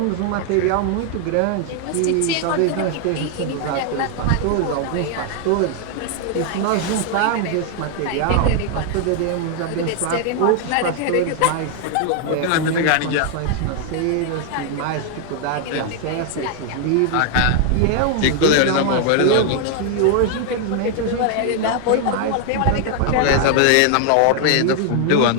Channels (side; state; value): both; different; correlation 0.00